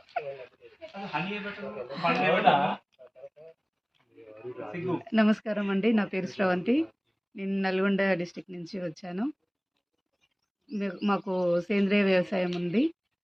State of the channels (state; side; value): identical; both; correlation 1.00